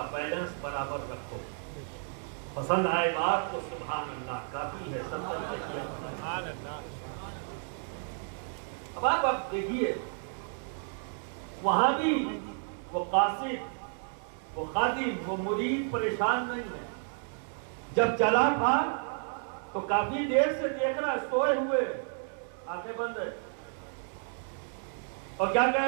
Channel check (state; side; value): silent; left; 57 dB below the other